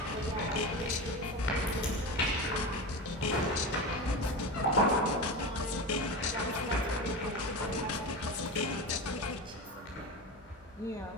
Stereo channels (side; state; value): both; normal; correlation 0.24